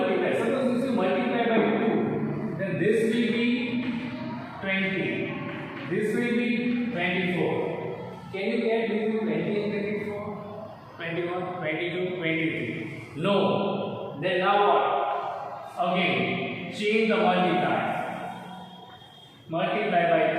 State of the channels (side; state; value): both; identical; correlation 1.00